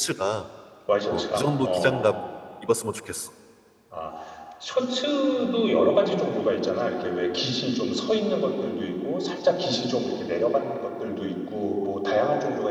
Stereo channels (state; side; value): identical; both; correlation 1.00